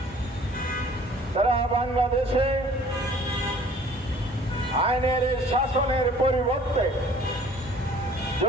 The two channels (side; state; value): both; normal; correlation 0.52